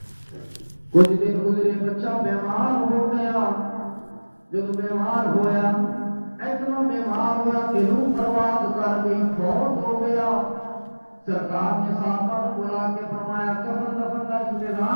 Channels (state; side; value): inverted; both; correlation -1.00